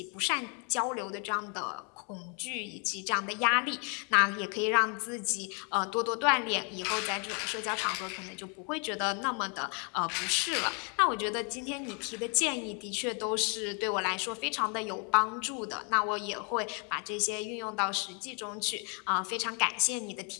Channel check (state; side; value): quieter; right; 36.7 dB